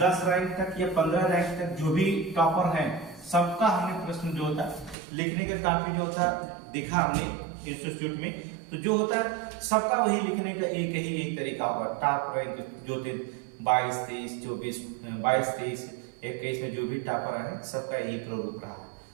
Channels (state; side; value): drops out; left; at 5.0 s